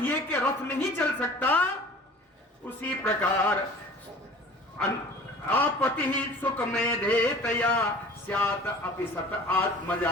के रथ नहीं चल सकता, उसी प्रकार आपति सुख मेधेतया स्यात् अपि सत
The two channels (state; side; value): normal; both; correlation 0.45